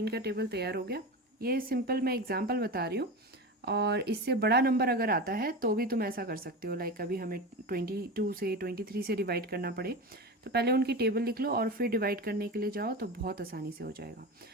का टेबल तैयार हो गया। ये सिंपल मैं एग्जांपल बता रही हूँ, और इससे बड़ा नंबर अगर आता है तो भी तुम ऐसा कर सकते हो। लाइक अभी हमें 22 से 23 से डिवाइड करना पड़े तो पहले उनकी टेबल लिख लो और फिर डिवाइड करने के लिए जाओ तो बहुत आसानी से हो जाएगा।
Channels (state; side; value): normal; both; correlation 0.25